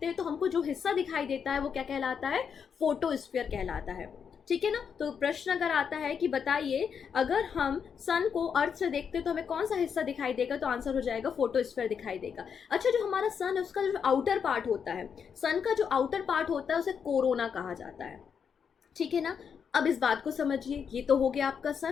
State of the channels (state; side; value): quieter; right; 6.9 dB